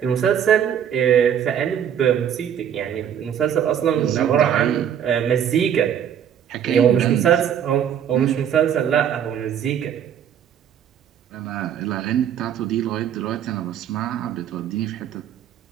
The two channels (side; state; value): left; quieter; 9.1 dB